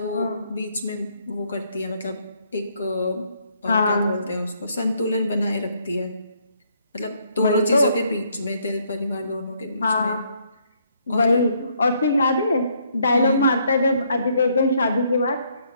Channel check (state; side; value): inverted; both; correlation -0.70